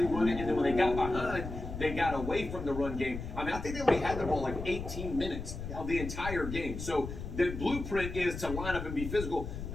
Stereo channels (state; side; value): noise; left; rumble, 7 dB below the sound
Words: run it, and then when they got behind, they got away from the run game. I mean, I think they only had the ball like 18 minutes of the entire game. So the blueprint is to line up and be physical.